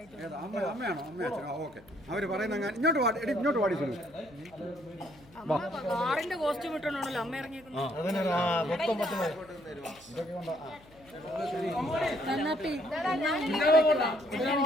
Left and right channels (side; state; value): left; noise; hum, 25 dB below the sound